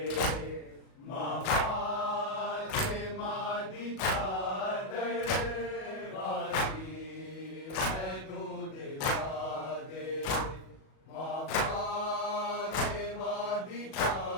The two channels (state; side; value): late; right; 37 ms